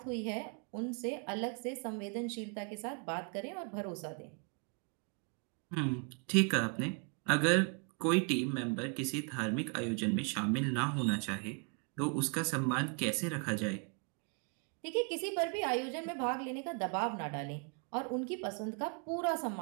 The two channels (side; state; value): left; quieter; 37.1 dB